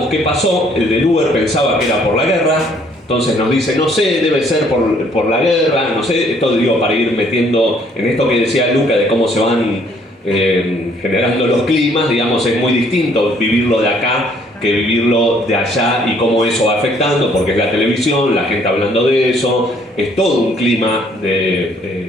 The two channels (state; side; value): normal; both; correlation 0.63